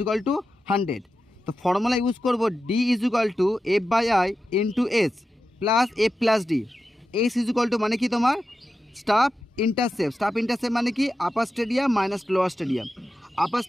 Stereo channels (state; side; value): normal; both; correlation 0.91